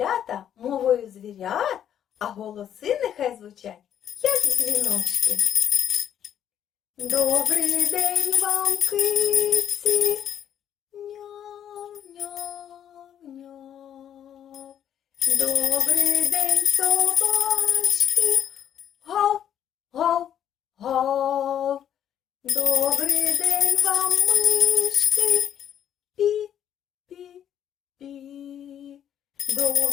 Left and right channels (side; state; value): right; quieter; 9.9 dB